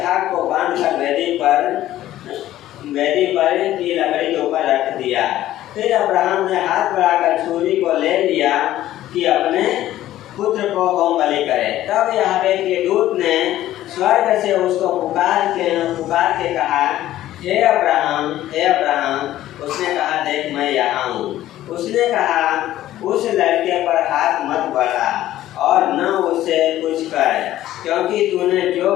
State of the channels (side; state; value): right; quieter; 13.8 dB